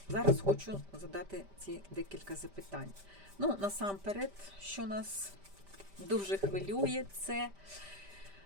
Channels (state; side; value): late; left; 5.1 ms